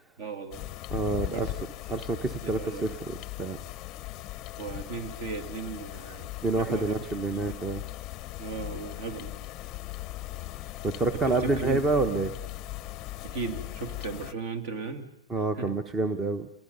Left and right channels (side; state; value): both; normal; correlation 0.38